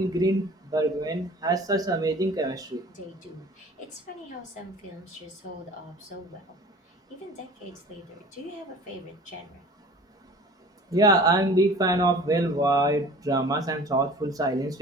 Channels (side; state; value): both; normal; correlation 0.44